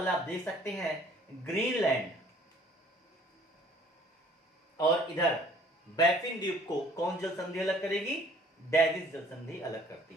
आप देख सकते हैं, ग्रीनलैंड और इधर बैफिन द्वीप को कौन जल संधि अलग करेगी? डेविस जल संधि अलग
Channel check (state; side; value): normal; both; correlation 0.56